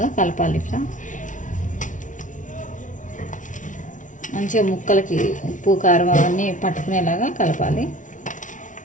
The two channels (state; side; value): late; right; 0.37 ms